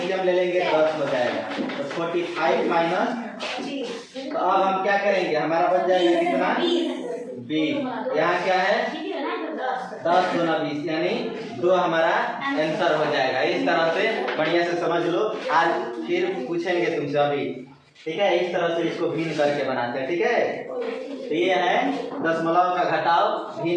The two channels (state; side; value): identical; both; correlation 1.00